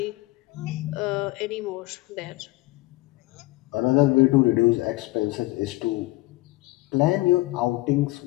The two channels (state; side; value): quieter; right; 20.2 dB